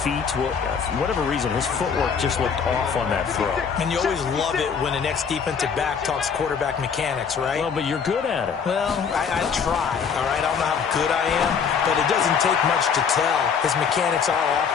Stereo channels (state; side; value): quieter; right; 6.5 dB